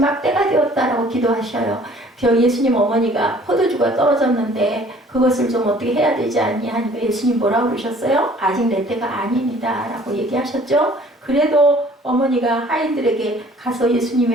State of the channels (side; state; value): both; normal; correlation 0.54